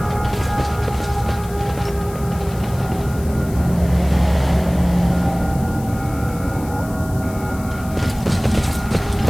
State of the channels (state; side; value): noise; left; hiss, 19 dB below the sound